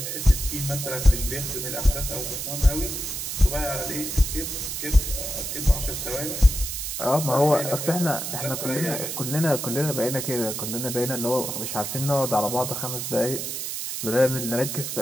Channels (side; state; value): right; noise; hiss, 4 dB below the sound